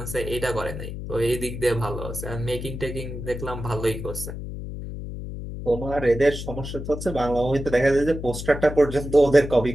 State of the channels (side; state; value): left; noise; hum, 8 dB below the sound